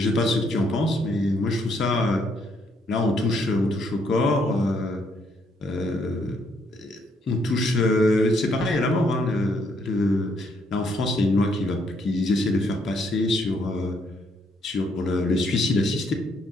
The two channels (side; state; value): both; normal; correlation 0.71